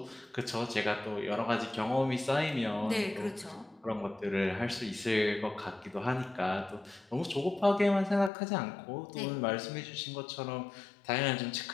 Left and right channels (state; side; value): drops out; right; at 8.3 s